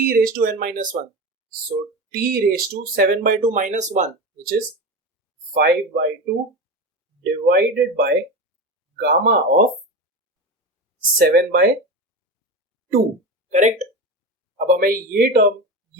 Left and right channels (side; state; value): both; normal; correlation 0.23